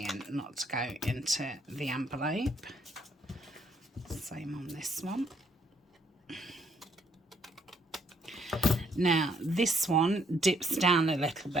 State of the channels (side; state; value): both; normal; correlation 0.69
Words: not to go into the envelope. Same on this one. Now this one dips down a little